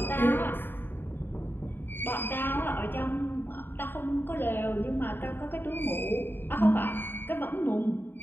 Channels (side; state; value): right; late; 0.097 ms